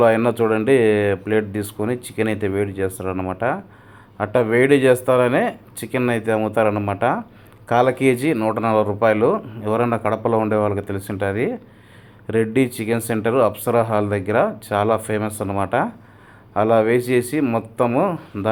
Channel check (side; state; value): both; identical; correlation 1.00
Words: అయినా చూడండి, ప్లేట్ తీసుకొని చికెన్ అయితే వేడి చేస్తారనమాట. అట్లా వేడి చేస్తారనే చికెన్ అయితే అమ్ముతారనమాట. కాల కేజీ 140 రూపాయలు. ఎవరైనా కడపలో ఉండే వాళ్ళకి తెలిసి ఉంటుంది. Reddy chicken centre Apsara hall దగ్గర చాలా ఫేమస్ అనమాట. అలా వేసేసి మొత్తము